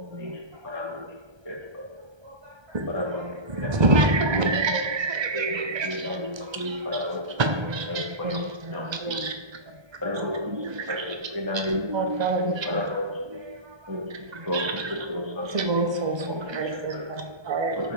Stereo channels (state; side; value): late; left; 1.3 ms